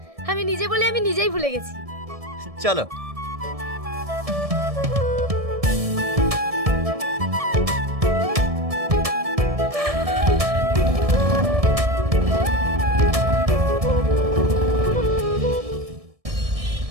আমি নিজে বলে আমি নিজেই ভুলে গেছি। চলো।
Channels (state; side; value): late; left; 1.7 ms